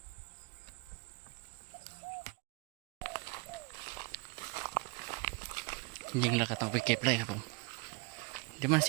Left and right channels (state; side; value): quieter; left; 29.8 dB